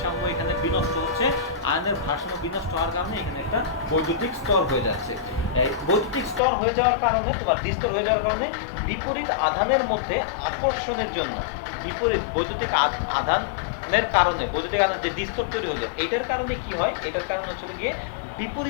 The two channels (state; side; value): drops out; right; at 6.4 s